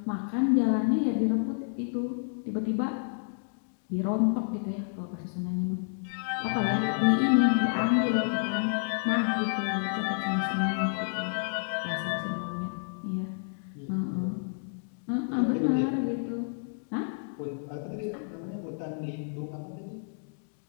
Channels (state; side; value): silent; right; digital silence